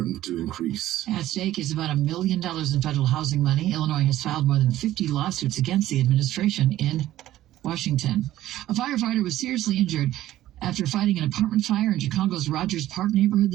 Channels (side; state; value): left; quieter; 14.2 dB